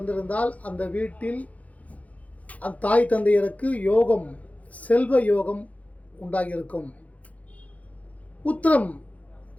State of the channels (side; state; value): right; late; 0.070 ms